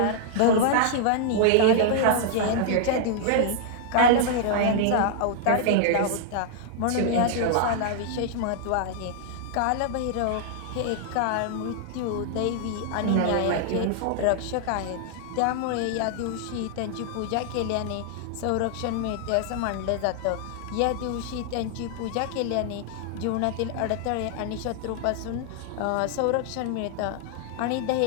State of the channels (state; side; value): different; both; correlation -0.01